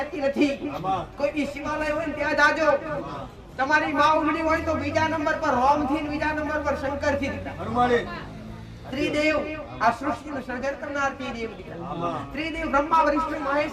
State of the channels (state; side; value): identical; both; correlation 1.00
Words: નથી. કોઈ બી શિવાલય હોય ને ત્યાં જાજો. તમારી માં ઉમડી હોય તો બીજા નંબર પર રોમ થી, બીજા નંબર પર શંકર થી. ત્રિદેવ આ સૃષ્ટિનું સર્જન કરનાર ત્રિદેવ દીકરા. ત્રિદેવ બ્રહ્મા વિષ્ણુ